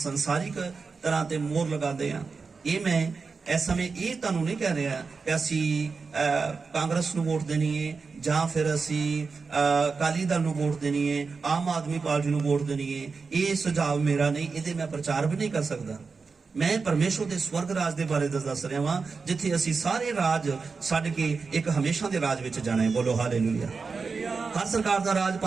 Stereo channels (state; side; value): quieter; left; 4.7 dB